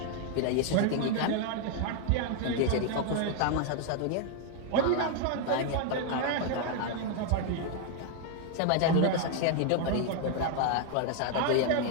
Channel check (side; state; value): both; different; correlation 0.00